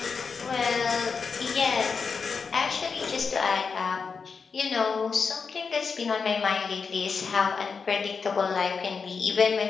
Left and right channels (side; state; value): right; quieter; 5.3 dB